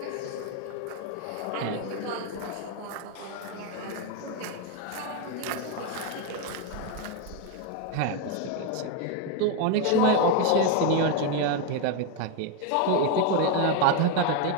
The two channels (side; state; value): both; different; correlation 0.02